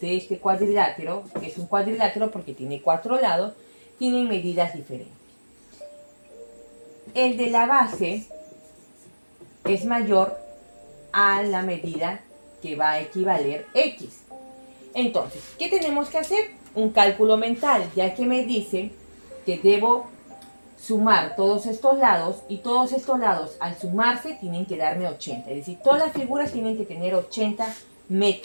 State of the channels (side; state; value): both; inverted; correlation -1.00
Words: de este cuadrilátero, que es un cuadrilátero porque tiene 4 lados, tienen medidas diferentes. El de la base es mayor a la medida que va a equivaler X. Entonces, ¿qué tenemos que hacer? Un cálculo mental, ya que me dice que debo sumar todos estos lados y todos estos lados al sumarse tienen que darme 80. Es decir, todas las figuras tienen que tener 80